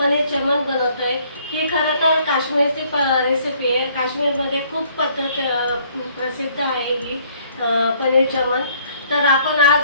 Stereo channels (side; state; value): both; inverted; correlation -0.62